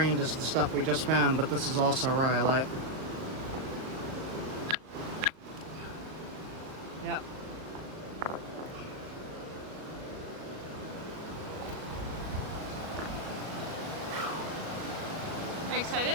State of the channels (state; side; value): late; left; 37 ms